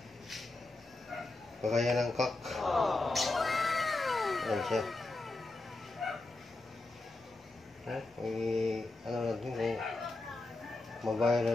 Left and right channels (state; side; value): quieter; right; 3.1 dB